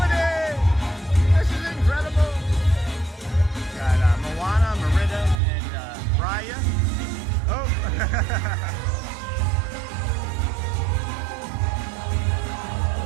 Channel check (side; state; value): left; drops out; at 5.4 s